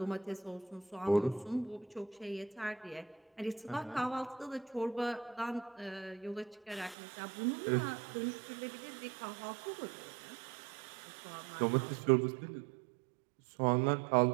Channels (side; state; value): left; drops out; at 7.0 s